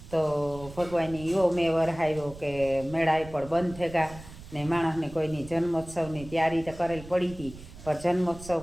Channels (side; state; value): right; noise; rumble, 16 dB below the sound